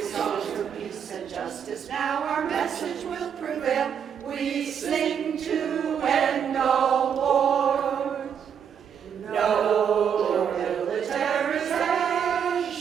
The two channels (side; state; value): left; quieter; 7.9 dB